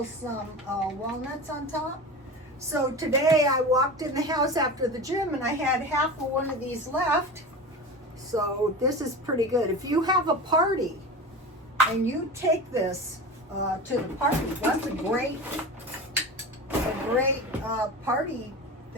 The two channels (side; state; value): both; normal; correlation 0.29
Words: some walnuts on top. So today I walked in the house after the gym and I had half of one of these left. So this is pretty good. If you have a party and you take this to the party, that's a great party